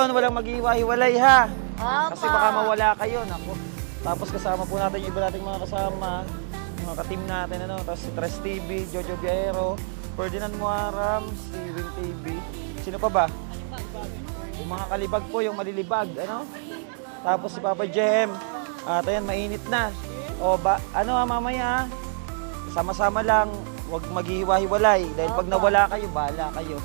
walang mag-iwa-hiwalay, ha? Kasi baka mawala kayo, naku. Tapos kasama po natin yung iba nating mga kasama. Mga ka-team natin, Tapos si Tres TV, Jojo Viero, Ferdinand Muaram, si Win TV. Sino pa ba? Yung mga kalibag po, yung malilibag, Tapos si Papa Jem. At ayan, mainit na. O, mamaya, sama-sama lang, huwag maghihiwa-hiwalay. Dahil pag nawala kayo, bahala kayo.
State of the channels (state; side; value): silent; left; 61 dB below the other